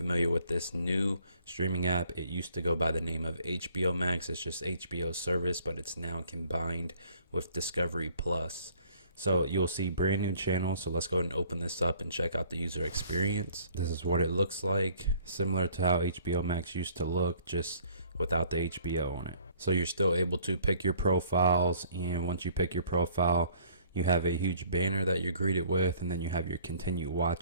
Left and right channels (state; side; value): inverted; both; correlation -0.57